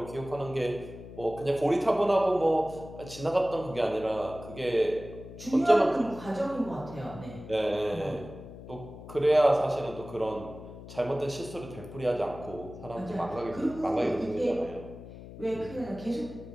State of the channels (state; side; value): noise; left; hum, 14 dB below the sound